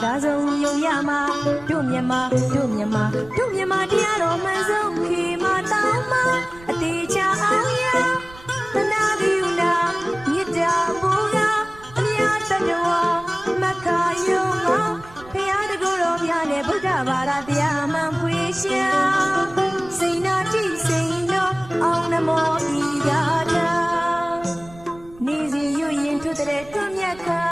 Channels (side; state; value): right; noise; rumble, 21 dB below the sound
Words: သာဆုံးယုံရမှာတို့မြန်မာတရားတော်မှန်ဆုံးခေမာတောင်းမှာအသေးချအောင်ရသနာပြုနာမြစ်တာဘူကအများတတော်မခါယုံမှာဖရာတကူတော်မြတ်နဲ့ဗုဒ္ဓဘာသာတရားမှန်ဖွေရှာစိန်နာတိစိန်တော်အောင်နမောဤရာထာနေစီရွရင်ထွတ်တဲ့တွမြတ်ခါ